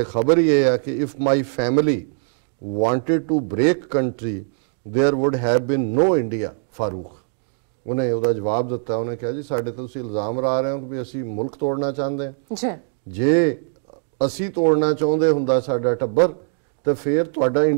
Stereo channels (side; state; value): left; silent; 64 dB below the other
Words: ਖਬਰ ਹੀ ਇਹ ਹੈ ਕਿ if my family wanted to break country there would have been no India. Farooq ਉਹਨੇ ਉਹਦਾ ਜਵਾਬ ਦਿੱਤਾ। ਉਹਨੇ ਕਿਹਾ ਜੀ ਸਾਡੇ ਤੇ ਤੁਸੀਂ ਇਲਜ਼ਾਮ ਲਾ ਰਹੇ ਹੋ ਕਿ ਅਸੀਂ ਮੁਲਕ ਤੋੜਨਾ ਚਾਹੁੰਦੇ ਹਾਂ। ਜੇ ਅਸੀਂ ਤੋੜਨਾ ਚਾਹੁੰਦੇ ਹੁੰਦਾ ਸਾਡਾ ਟੱਬਰ तो फिर तुहाडा